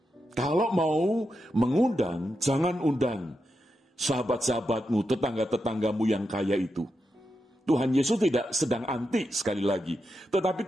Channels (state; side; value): normal; both; correlation 0.87